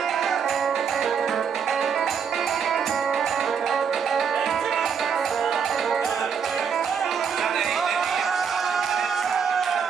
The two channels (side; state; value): left; quieter; 6.9 dB